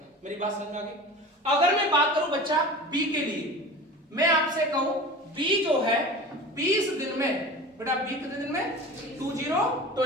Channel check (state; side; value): normal; both; correlation 0.36